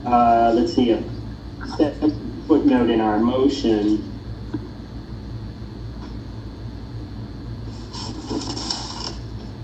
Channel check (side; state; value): both; identical; correlation 1.00